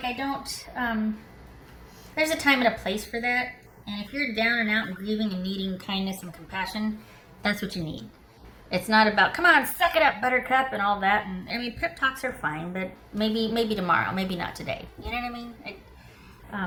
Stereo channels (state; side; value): identical; both; correlation 1.00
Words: I don't, there's a time and a place for that. And if you're down and out and grieving and needing kindness and compassion, that's what you need. It's not about, come on, suck it up, buttercup, and all that. And I mean, pep talks are fine, but maybe tomorrow, maybe not today. You know what I mean?